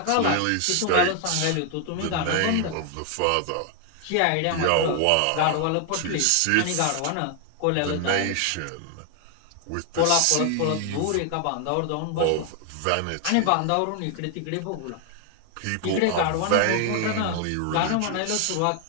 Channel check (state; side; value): different; both; correlation 0.00